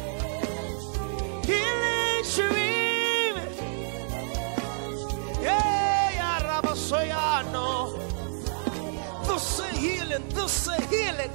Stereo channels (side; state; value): left; silent; digital silence